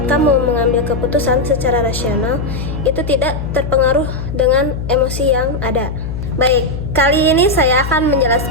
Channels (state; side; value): noise; left; hum, 6 dB below the sound